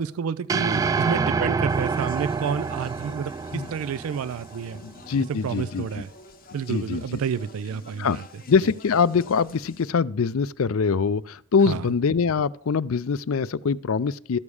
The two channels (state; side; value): normal; both; correlation 0.15